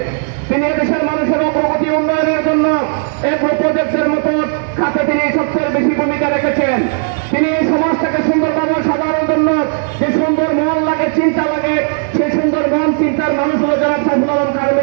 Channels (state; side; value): silent; left; 60 dB below the other